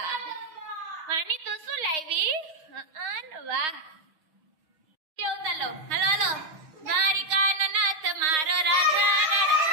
માની તું શું લાવી? વાહ કેવું? ચાલો હાલો દ્વારિકાનો નાથ મારો રાજા રણ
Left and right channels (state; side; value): late; left; 6.3 ms